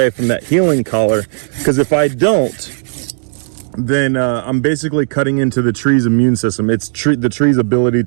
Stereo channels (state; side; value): silent; left; digital silence